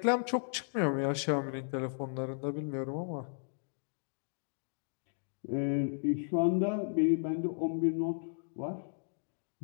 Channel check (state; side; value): silent; right; digital silence